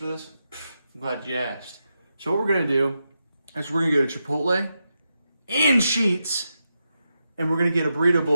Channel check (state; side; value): inverted; both; correlation -0.87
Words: this? I'm glad you asked. So what we're gonna do is we're gonna go to Chipotle and Sheetz, and we're gonna get a burrito